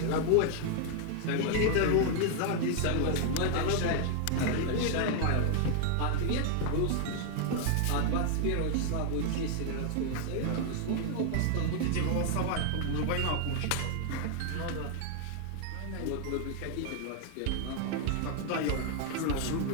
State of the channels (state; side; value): different; both; correlation 0.00